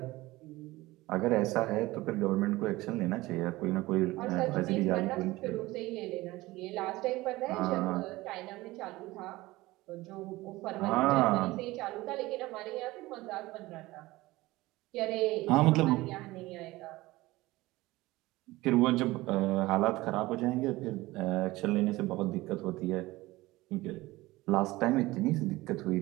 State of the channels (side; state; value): left; quieter; 19.3 dB